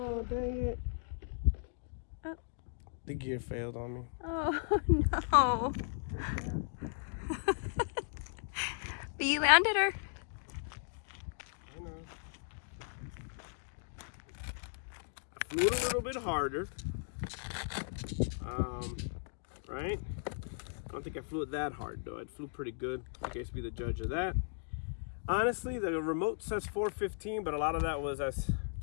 dang it. Oh. The gear failed on me. Oh no. But you landed her. I know. I flew it a little bit harder. Right? I don't think I flew it that hard though. I flew pretty good. You guys be the judge of that. Honestly, the remote says 415, but a lot of that was us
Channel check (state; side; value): silent; right; digital silence